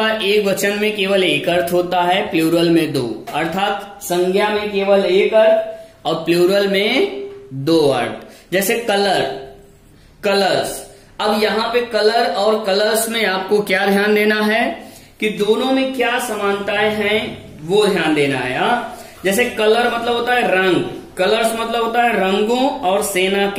एक वचन में केवल एक अर्थ होता है, प्लूरल में 2, अर्थात संज्ञा में केवल एक अर्थ और प्लूरल में 2 अर्थ। जैसे कलर, कलर्स। अब यहाँ पे कलर और कलर्स में आपको क्या ध्यान देना है कि दोनों में क्या समानताएं हैं वो ध्यान देना है। जैसे कलर मतलब होता है रंग, कलर्स मतलब होता है रंगों और सेना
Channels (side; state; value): both; identical; correlation 1.00